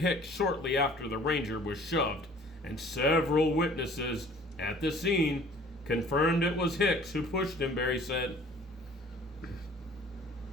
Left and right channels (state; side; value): normal; both; correlation 0.51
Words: shortly after the ranger was shoved, and several witnesses at the scene confirmed it was Hicks who pushed him, Berry said.